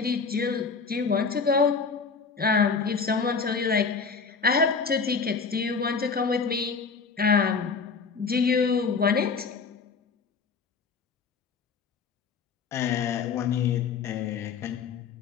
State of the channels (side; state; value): right; quieter; 5.2 dB